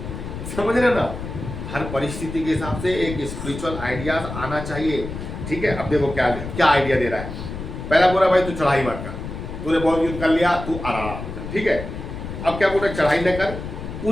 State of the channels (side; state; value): left; noise; rumble, 8 dB below the sound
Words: समझ रहे ना? हर परिस्थिति के हिसाब से एक स्पिरिचुअल आइडिया आना चाहिए, ठीक है? अब देखो क्या आइडिया दे रहा है। पहला बोला भाई तू चढ़ाई मत कर, तूने बहुत युद्ध कर लिया, तू आराम कर, ठीक है? अब क्या बोल रहा है, चढ़ाई न कर,